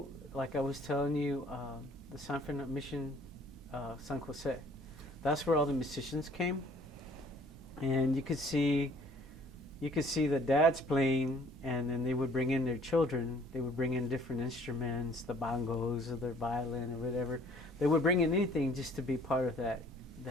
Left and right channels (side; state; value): both; normal; correlation 0.57